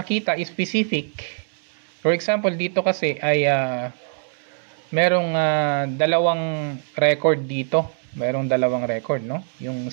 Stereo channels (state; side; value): silent; left; digital silence